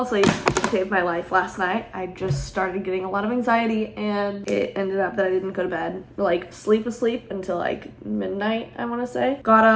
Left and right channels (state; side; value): identical; both; correlation 1.00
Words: asleep. Saved my life last night. I just started getting a lot of anxiety and it ended up that I didn't go to bed. Like sleep until like midnight, I want to say. Got